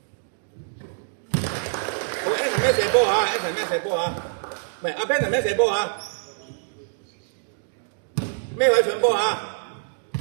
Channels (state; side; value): silent; left; digital silence